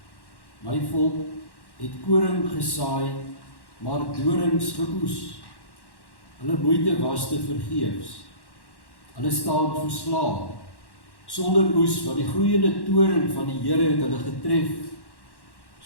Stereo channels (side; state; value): right; late; 1.1 ms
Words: My volk het koring gesaai, maar dorings geoes. Hulle moeite was te vergeefs. Hulle staan verslae, sonder oes, want die gloeiende toorn van die Here het hulle getref.